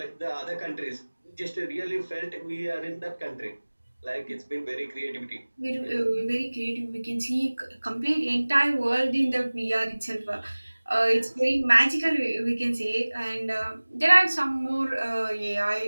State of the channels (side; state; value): both; inverted; correlation -1.00